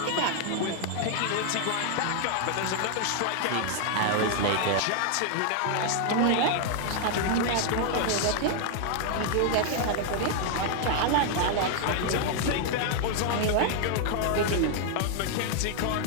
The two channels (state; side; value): different; both; correlation 0.00